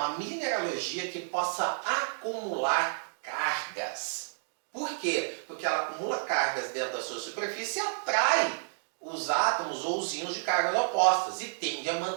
mineralogia que possa acumular cargas. Por quê? Porque ela acumula cargas dentro da sua superfície e atrai os átomos ou os íons de cargas opostas e tende a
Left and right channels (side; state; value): left; silent; digital silence